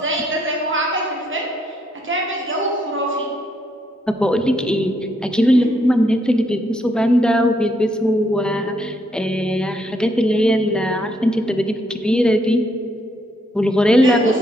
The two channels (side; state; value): both; normal; correlation 0.73